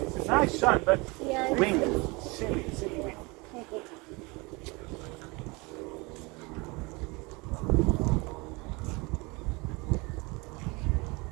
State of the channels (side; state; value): left; quieter; 26.5 dB